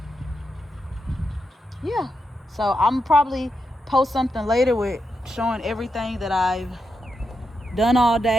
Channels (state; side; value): normal; both; correlation 0.85